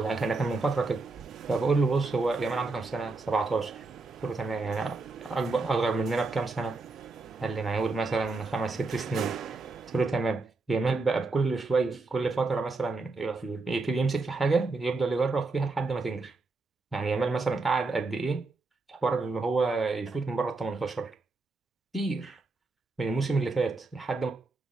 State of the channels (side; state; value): left; quieter; 3.6 dB